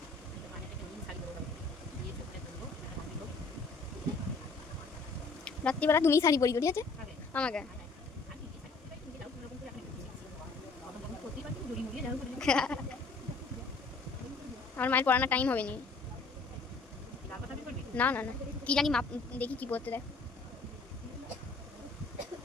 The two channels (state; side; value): quieter; right; 4.1 dB